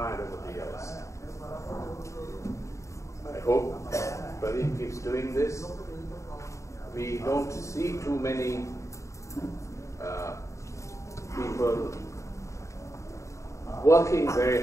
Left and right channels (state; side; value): late; right; 0.15 ms